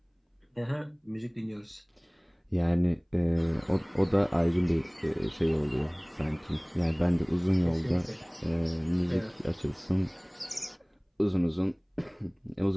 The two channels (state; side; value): identical; both; correlation 1.00